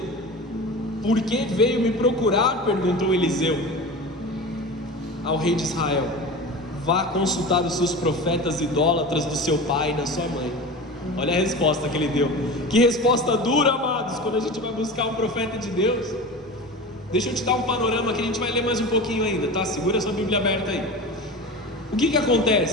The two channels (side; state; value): both; normal; correlation 0.31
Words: Por que veio me procurar? Perguntou Eliseu ao rei de Israel. Vá consultar os seus profetas idólatras do seu pai e da sua mãe. Olha a resposta que ele deu. Que resposta dura, amados, quando a gente vai buscar um profeta de Deus. Deixa eu te dar um panorama que a gente vai ler mais um pouquinho ainda, tá? Segura a sua Bíblia aberta aí. O que